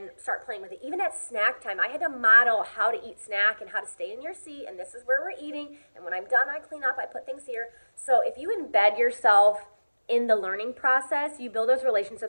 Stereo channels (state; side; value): inverted; both; correlation -1.00